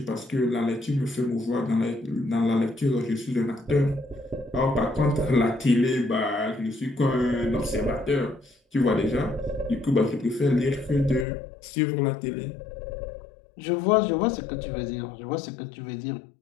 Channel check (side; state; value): right; drops out; at 11.2 s